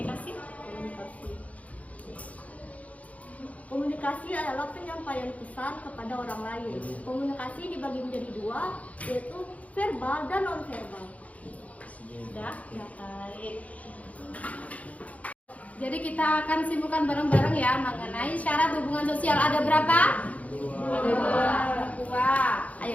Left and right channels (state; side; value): late; right; 0.069 ms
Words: Komunikasi adalah penyampaian pesan kepada orang lain. Komunikasi dibagi menjadi dua, yaitu verbal dan non-verbal. Sudah, ya baik. Jadi kita akan simpulkan bareng-bareng ya mengenai syarat hubungan sosial. Ada berapa? Dua.